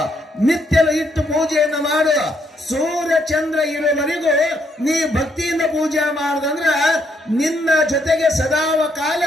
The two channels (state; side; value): normal; both; correlation 0.73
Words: ನಿತ್ಯ ಇಟ್ಟು ಪೂಜೆಯನ್ನ ಮಾಡು. ಸೂರ್ಯ ಚಂದ್ರ ಇರುವವರೆಗೂ ನೀ ಭಕ್ತಿಯಿಂದ ಪೂಜೆ ಮಾಡುದಂದ್ರ ನಿನ್ನ ಜೊತೆಗೆ ಸದಾವ ಕಾಲ